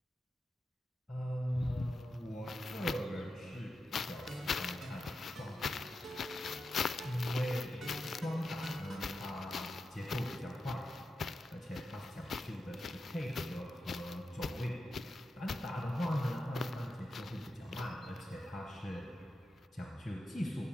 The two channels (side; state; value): both; normal; correlation 0.90